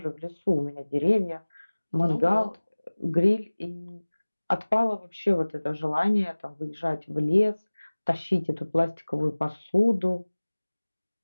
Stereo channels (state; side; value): inverted; both; correlation -1.00